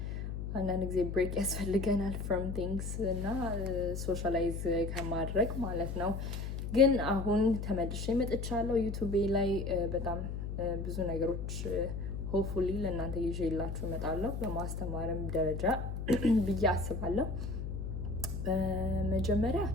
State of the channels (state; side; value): noise; left; hum, 5 dB below the sound